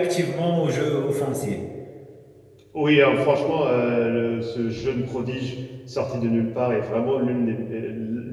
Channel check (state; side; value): identical; both; correlation 1.00